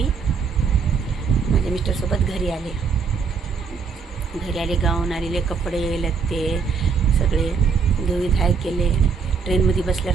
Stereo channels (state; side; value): quieter; left; 5.7 dB